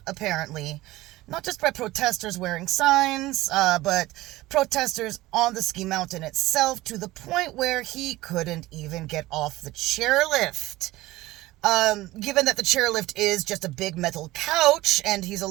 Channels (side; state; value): left; quieter; 18.0 dB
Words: apparently. Not just by protesters wearing signs, but protesters on the ski mountain itself, to the point where he couldn't even get off the chairlift. Given that the chairlift is just a big metal couch, and he's